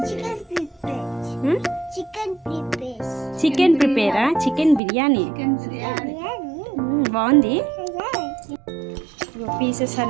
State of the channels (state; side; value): drops out; left; at 4.8 s